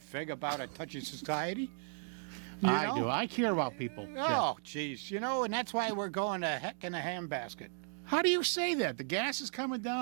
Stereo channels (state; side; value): silent; left; digital silence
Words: about a touchy society. I do. I care about people. Oh, jeez. And that's why we're going to heck in a handbasket. How do you say that? The gas is coming